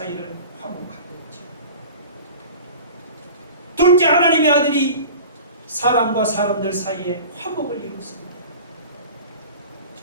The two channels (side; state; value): both; inverted; correlation -0.39